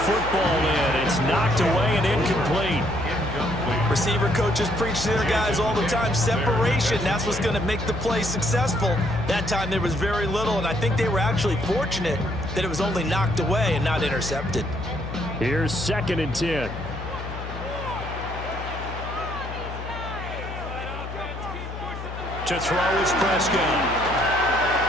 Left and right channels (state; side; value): noise; left; hum, 9 dB below the sound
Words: in. It's knocked away and incomplete. Receiver coaches preach to their guys all the time. Separation, that's what's going to make the play successful. That time there was very little, and I think they were actually fortunate that it was only knocked away and not intercepted. Here's 2nd and 10. To throw is Prescott.